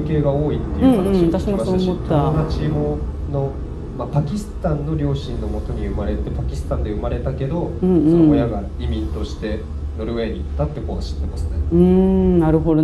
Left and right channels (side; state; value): both; identical; correlation 1.00